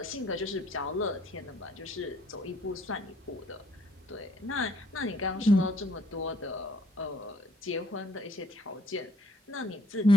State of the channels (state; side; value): normal; both; correlation 0.64